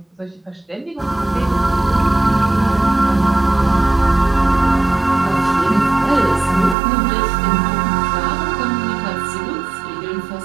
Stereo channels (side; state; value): left; drops out; at 6.8 s